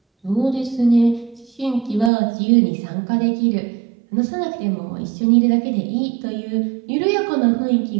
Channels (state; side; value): drops out; left; at 2.1 s